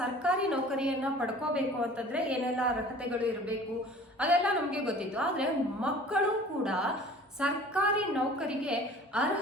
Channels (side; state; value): both; normal; correlation 0.46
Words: ನೌಕರಿಯನ್ನ ಪಡ್ಕೋಬೇಕು ಅಂತಂದ್ರೆ ಏನೆಲ್ಲ ಅರ್ಹತೆಗಳು ಇರಬೇಕು ಅದೆಲ್ಲ ನಮ್ಗೆ ಗೊತ್ತಿತ್ತು. ಆದ್ರೆ ಮಕ್ಕಳು ಕೂಡ ಸರ್ಕಾರಿ ನೌಕರಿಗೆ